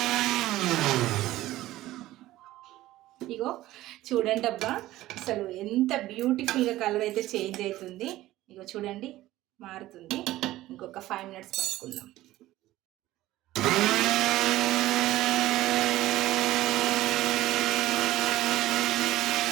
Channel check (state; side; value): quieter; left; 16.0 dB